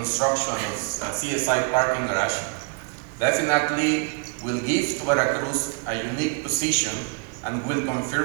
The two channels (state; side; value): quieter; left; 35.2 dB